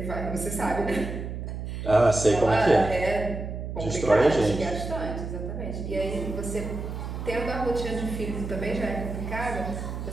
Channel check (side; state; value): right; noise; hum, 6 dB below the sound